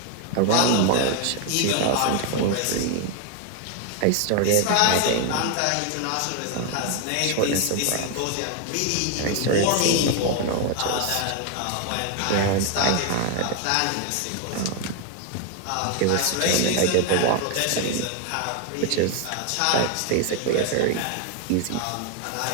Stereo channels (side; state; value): both; different; correlation 0.01